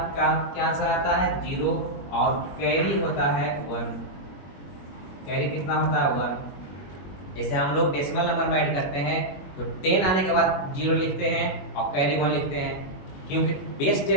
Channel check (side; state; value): right; late; 21 ms